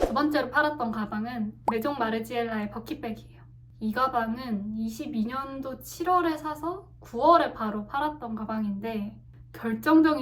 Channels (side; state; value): both; identical; correlation 1.00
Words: 번째로 팔았던 가방은 메종 마르지엘라의 버킷백이에요. 이 가방은 22년도 7월에 사서 9월에 바로 팔았던 가방인데